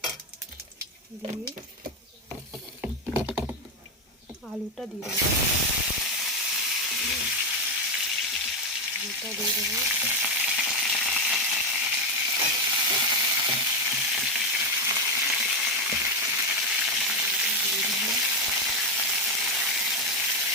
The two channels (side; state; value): both; normal; correlation 0.08